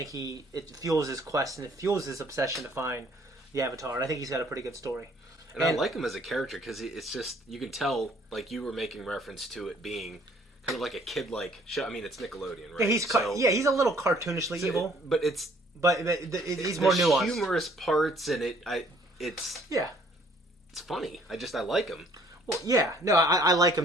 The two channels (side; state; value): both; normal; correlation 0.60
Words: it fuels his quest, and it fuels his obsession to find the Avatar. And I think he's got a pretty good story. And I like him as a character because it's just, you can tell, you were making reference to it being kind of like a kid-like show. I mean, it's Nickelodeon, right? Yeah, he's a little cartoonishly evil. But it's... But he's more nuanced. Humorous parts, and it's... Yeah. It's funny. I like him. Well, yeah. No, I like